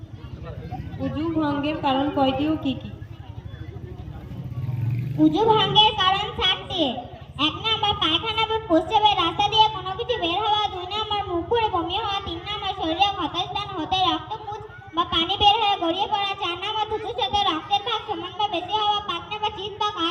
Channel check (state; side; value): identical; both; correlation 1.00